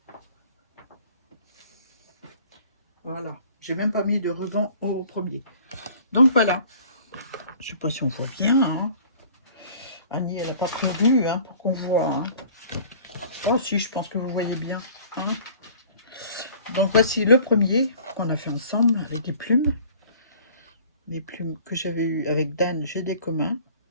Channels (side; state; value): both; inverted; correlation -0.50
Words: Voilà. J'ai même pas mis de ruban au premier. Donc voilà. Je sais pas si on voit bien. Hein. Annie, elle n'a pas prévu hein, pour qu'on voit. Hein. Oh si, je pense que vous voyez bien. Hein. Donc voici le premier qu'on a fait ensemble avec des plumes. Des plumes que j'avais eues avec Dan, j'ai des communs,